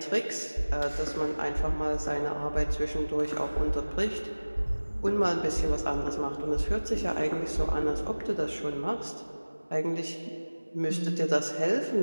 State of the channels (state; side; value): inverted; both; correlation -1.00